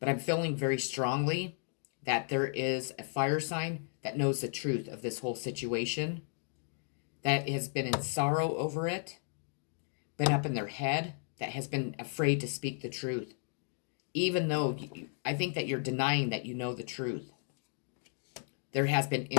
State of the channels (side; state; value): right; silent; 55 dB below the other